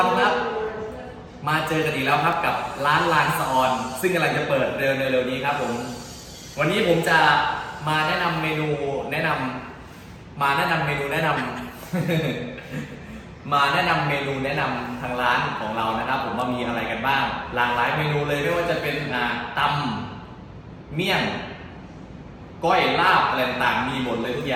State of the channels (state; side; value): identical; both; correlation 1.00